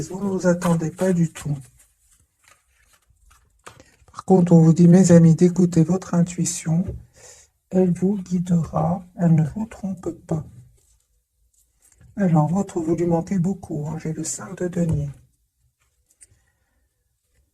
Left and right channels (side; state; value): both; identical; correlation 1.00